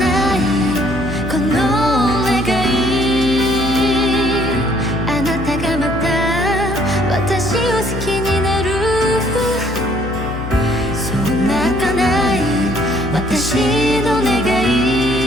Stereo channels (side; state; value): left; noise; hum, 7 dB below the sound